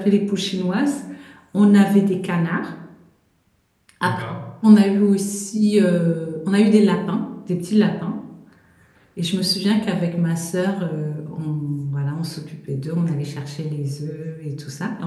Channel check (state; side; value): identical; both; correlation 1.00